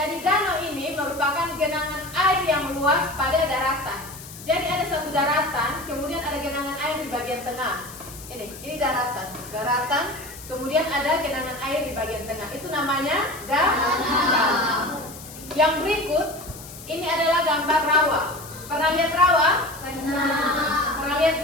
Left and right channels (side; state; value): left; noise; hiss, 15 dB below the sound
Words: danau ini merupakan genangan air yang luas pada daratan. Jadi ada satu daratan, kemudian ada genangan air di bagian tengah. Ini daratan, kemudian ada genangan air di bagian tengah. Itu namanya danau. Yang berikut, ini adalah gambar rawa. Pernah lihat rawa? Pernah lihat